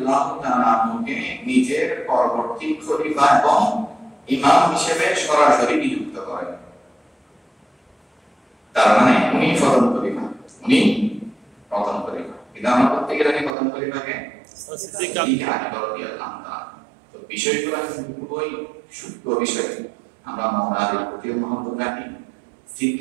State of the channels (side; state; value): left; drops out; at 13.6 s